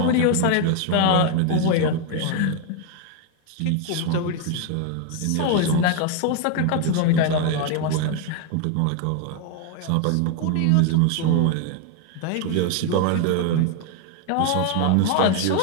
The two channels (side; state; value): both; different; correlation 0.01